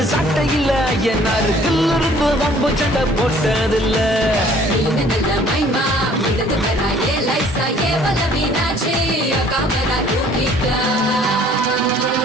சட்டையில என்னாரு கில்லிருந்து வம்பு சண்டை போட்டதில்ல நீனல்ல மைமா இதது பெறாயே லைசா ஏ வலவினாச்சி காமரா தூக்கிட்டா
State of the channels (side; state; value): both; normal; correlation 0.56